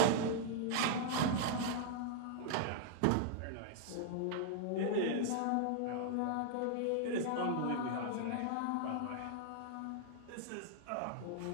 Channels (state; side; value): different; both; correlation -0.01